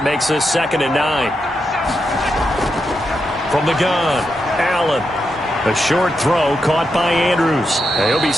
makes this 2nd and 9. From the gun, Allen. A short throw caught by Andrews. He'll be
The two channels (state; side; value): normal; both; correlation 0.85